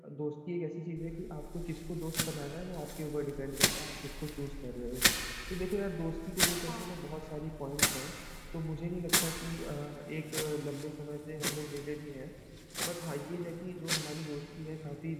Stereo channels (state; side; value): identical; both; correlation 1.00